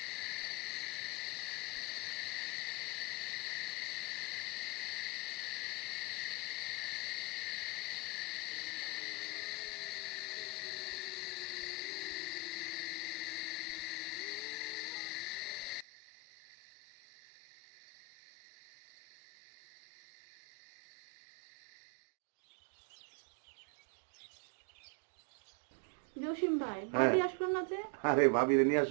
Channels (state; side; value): drops out; left; at 15.9 s